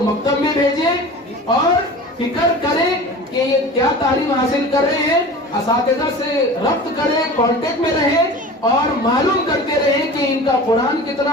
مکتب میں بھیجیں اور فکر کریں کہ یہ کیا تعلیم حاصل کر رہے ہیں، اساتذہ سے ربط کریں، کانٹیکٹ میں رہیں اور معلوم کرتے رہیں کہ ان کا قرآن کتنا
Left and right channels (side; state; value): both; normal; correlation 0.37